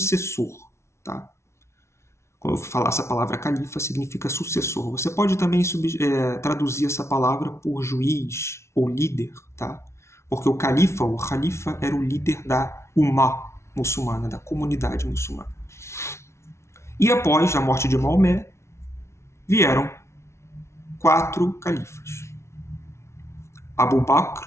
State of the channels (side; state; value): right; late; 0.13 ms